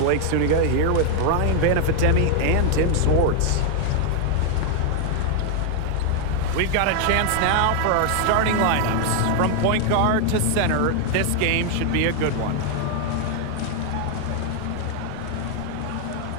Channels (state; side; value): different; both; correlation 0.00